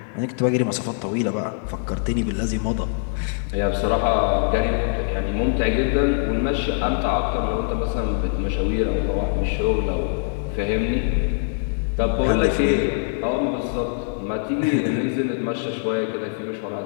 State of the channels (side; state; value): right; silent; digital silence